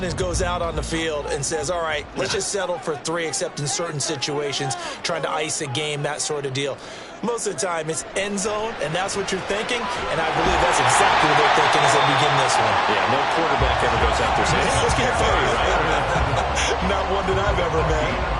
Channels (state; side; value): identical; both; correlation 1.00